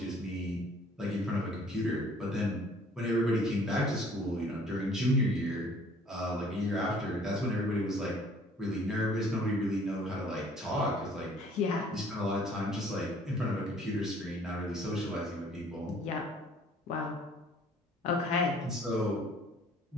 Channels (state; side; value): normal; both; correlation 0.56